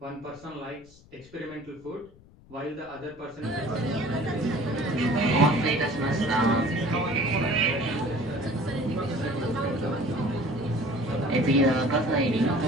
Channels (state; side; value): noise; left; rumble, 24 dB below the sound